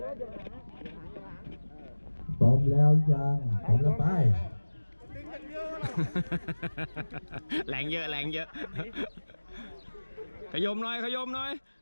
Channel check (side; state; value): both; inverted; correlation -1.00